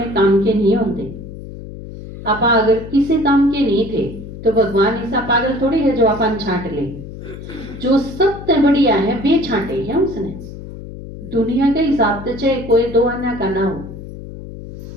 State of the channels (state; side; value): noise; left; hum, 12 dB below the sound